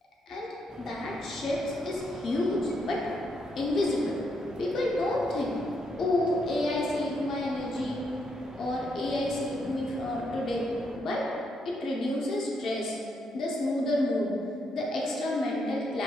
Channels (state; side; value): normal; both; correlation 0.77